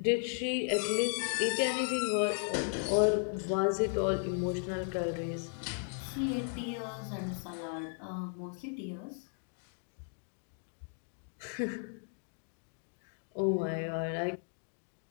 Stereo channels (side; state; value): right; silent; 54 dB below the other